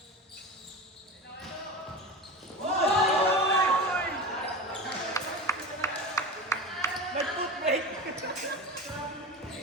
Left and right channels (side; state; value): both; normal; correlation 0.27